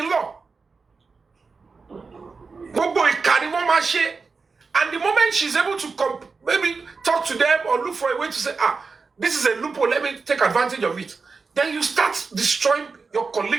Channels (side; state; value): left; quieter; 4.6 dB